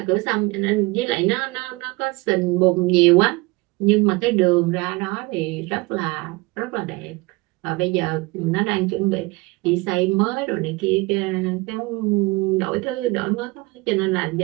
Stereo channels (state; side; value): quieter; left; 23.6 dB